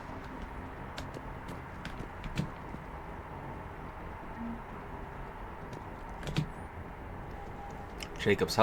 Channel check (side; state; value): both; identical; correlation 1.00